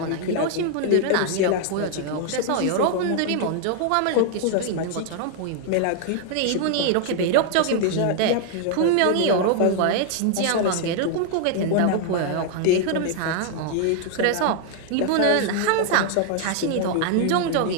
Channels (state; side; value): different; both; correlation 0.00